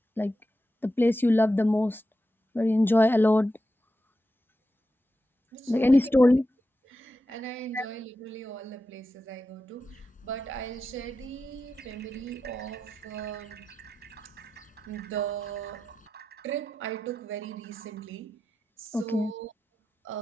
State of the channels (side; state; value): both; normal; correlation 0.90